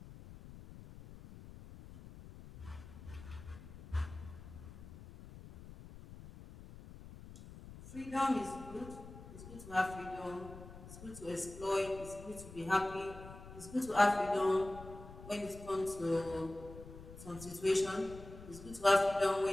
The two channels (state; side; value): noise; left; rumble, 15 dB below the sound